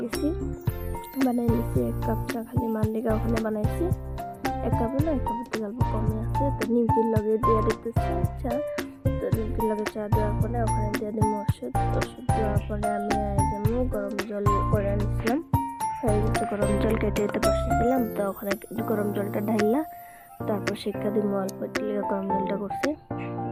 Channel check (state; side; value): identical; both; correlation 1.00